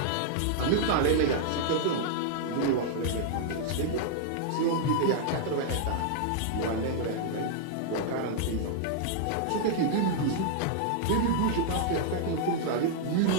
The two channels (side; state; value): both; different; correlation -0.01